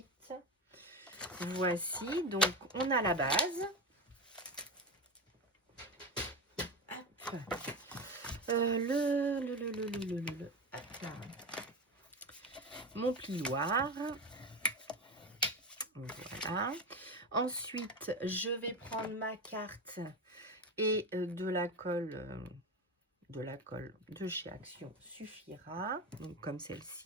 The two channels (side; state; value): both; normal; correlation 0.20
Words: Voici, donc on a la base. Hop. Hop là. Mon plioir. Voilà. Ensuite, je vais prendre ma carte et de la colle de chez Action suffira. Donc comme